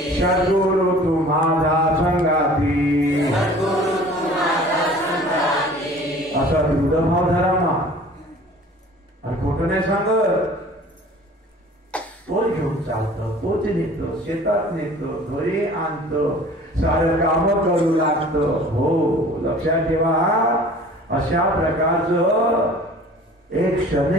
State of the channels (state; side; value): normal; both; correlation 0.47